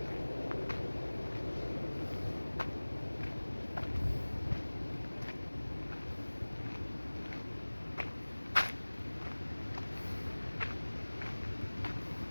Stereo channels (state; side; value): inverted; both; correlation -1.00